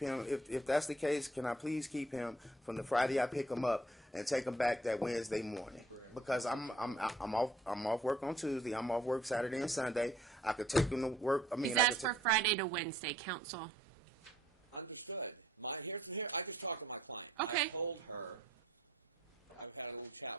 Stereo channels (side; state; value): both; normal; correlation 0.61